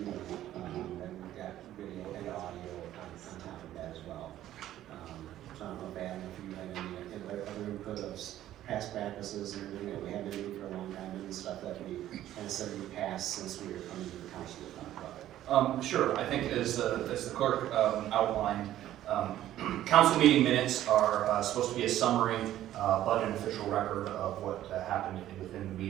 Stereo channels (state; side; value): quieter; left; 13.0 dB